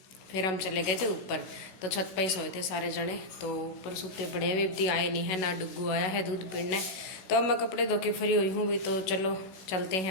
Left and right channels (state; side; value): late; right; 16 ms